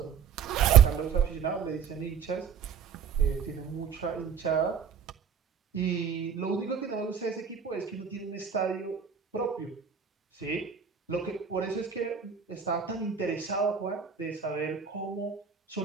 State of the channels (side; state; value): left; quieter; 7.2 dB